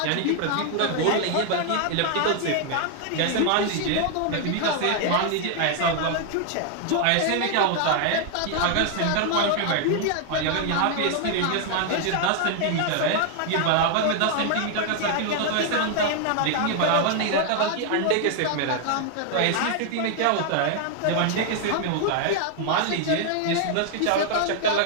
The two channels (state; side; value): different; both; correlation 0.00